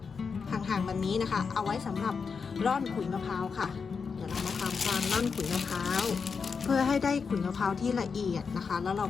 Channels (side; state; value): right; quieter; 5.5 dB